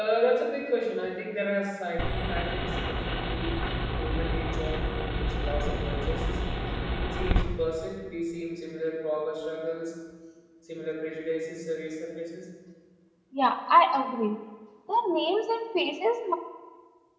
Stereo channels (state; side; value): identical; both; correlation 1.00